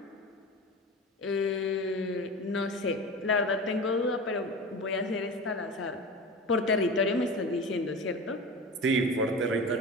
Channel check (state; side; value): normal; both; correlation 0.30